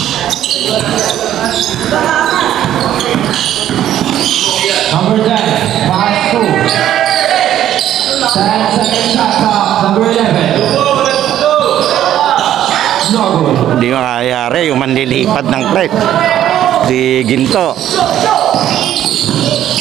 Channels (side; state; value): left; quieter; 11.6 dB